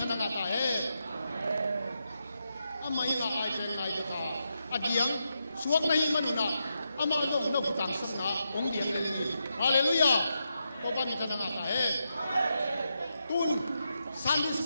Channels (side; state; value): both; inverted; correlation -0.85